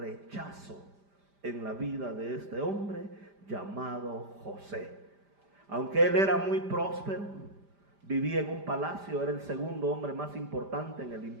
en la vida de este hombre llamado José. Aunque él era muy próspero, vivía en un palacio, era el segundo hombre más importante en el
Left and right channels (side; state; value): left; late; 5.0 ms